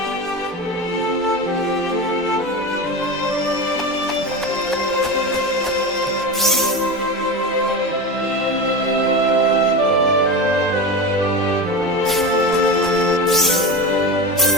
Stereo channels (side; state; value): both; normal; correlation 0.23